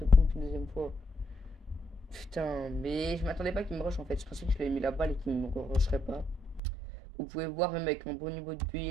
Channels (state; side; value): drops out; left; at 6.6 s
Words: pompe une deuxième fois. Putain, mais je m'attendais pas qu'il me rush en fait. Je pensais que je lui avais mis la balle et qu'il ne me rusherait pas. Vous pouvez voir, même avec un bon niveau de